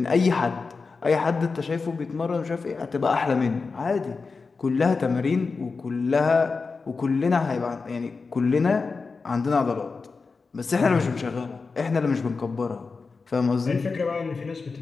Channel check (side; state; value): right; quieter; 4.5 dB